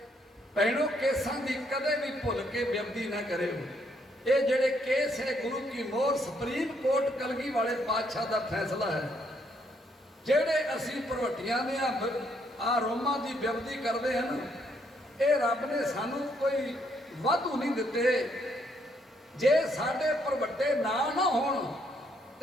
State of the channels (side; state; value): both; normal; correlation 0.72